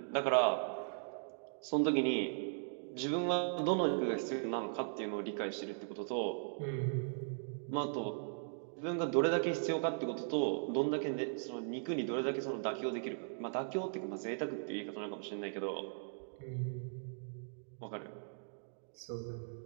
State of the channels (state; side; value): silent; left; digital silence